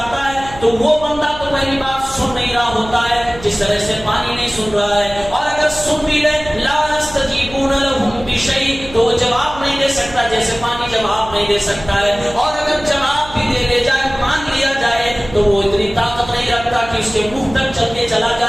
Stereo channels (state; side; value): noise; right; hum, 16 dB below the sound